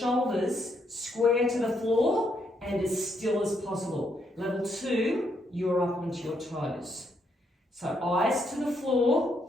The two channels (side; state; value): both; normal; correlation 0.76